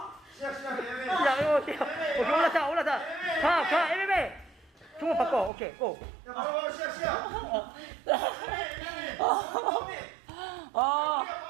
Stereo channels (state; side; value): drops out; left; at 5.5 s